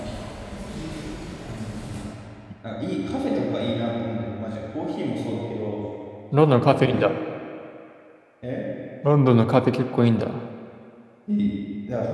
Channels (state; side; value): identical; both; correlation 1.00